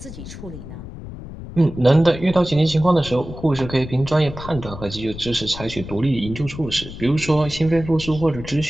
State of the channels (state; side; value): noise; left; rumble, 12 dB below the sound